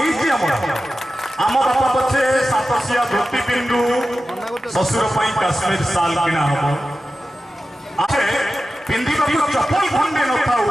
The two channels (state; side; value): normal; both; correlation 0.93